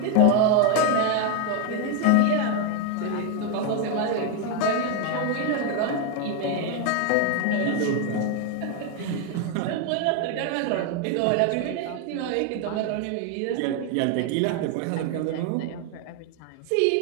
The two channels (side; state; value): both; different; correlation 0.01